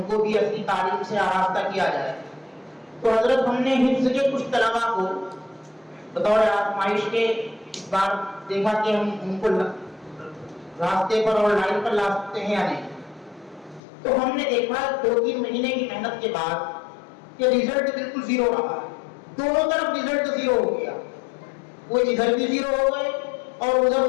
کو بھی اصلی تعلیم سے آراستہ کیا جائے، تو حضرت ہم نے حفظ کے کچھ طلباء کو بطور آزمائش کے اس بار دیکھا کہ ہم ان کو راستے پر اور لائن پر لا سکتے ہیں یا نہیں. تو ہم نے دیکھا 2-3 مہینے کی محنت کے بعد کہ رزلٹ بالکل زیرو رہا، دونوں طرف رزلٹ زیرو ہو گیا، وہ ادھر بھی زیرو ہو گئے اور ادھر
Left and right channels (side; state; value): right; drops out; at 13.8 s